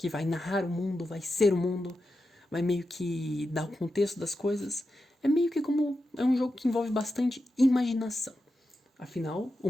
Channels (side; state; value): both; normal; correlation 0.89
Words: vai narrar o mundo, vai ser o mundo, vai meio que dar o contexto das coisas. É meio que como, é um jogo que envolve bastante imaginação. Afinal, o